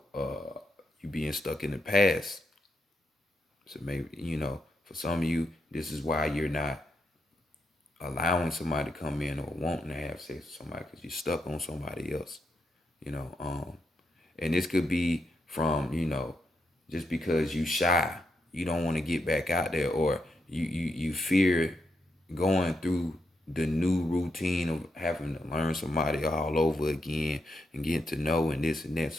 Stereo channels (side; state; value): both; normal; correlation 0.82